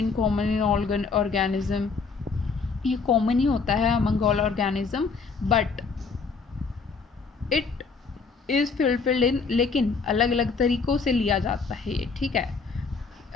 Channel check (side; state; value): right; quieter; 4.8 dB